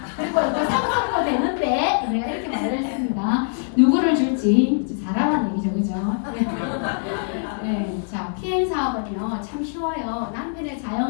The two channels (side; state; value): right; silent; digital silence